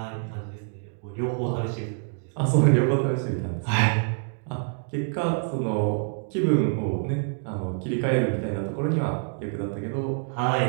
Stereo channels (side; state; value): left; silent; 61 dB below the other